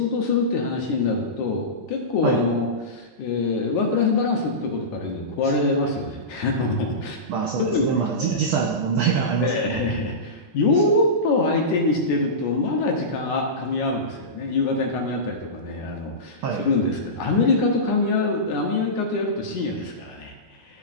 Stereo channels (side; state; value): both; normal; correlation -0.18